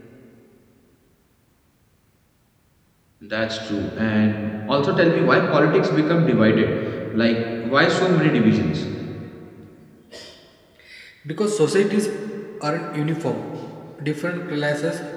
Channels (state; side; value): identical; both; correlation 1.00